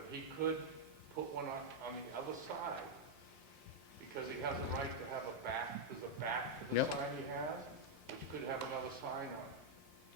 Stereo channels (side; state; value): both; normal; correlation -0.02